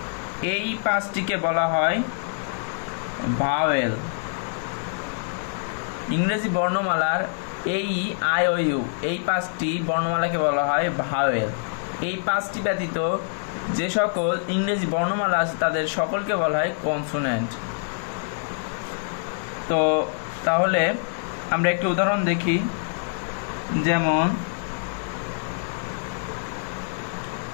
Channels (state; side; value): silent; right; digital silence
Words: এই পাঁচটিকে বলা হয় ভাওয়েল। ইংরেজি বর্ণমালার এই, আই, ও, ইউ এই পাঁচটি বর্ণমালাকে বলা হয় ভাওয়েল। এই পাঁচটি ব্যতীত যে সকল ইংরেজি বর্ণমালা আছে তাদের সকলকে বলা হয় কনসোনেন্ট। তো তাহলে আমরা একটি উদাহরণ দেখি, যেমন